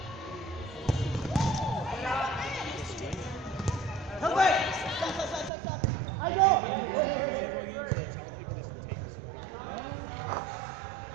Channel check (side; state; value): left; drops out; at 5.5 s